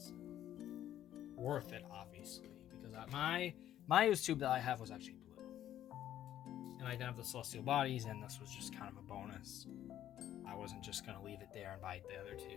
Worth it, obviously, because my used tube that I have was actually blue, and I didn't have the Celestial Bodies, and this was just kind of a bonus. I wasn't just gonna leave it there and buy the other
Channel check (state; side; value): quieter; right; 11.8 dB